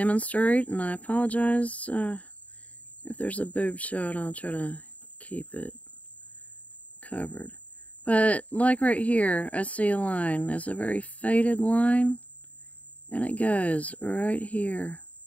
and I apologize if there's a boob shot. I'll try to keep it covered. But like right here, I see a line. It's a very faded line, and it goes right here.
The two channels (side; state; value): right; late; 0.069 ms